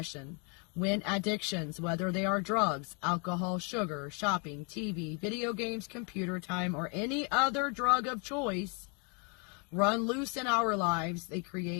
When addictions, whether they are drugs, alcohol, sugar, shopping, TV, video games, computer time, or any other drug of choice, run loose in our lives, they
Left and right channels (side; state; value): right; quieter; 35.8 dB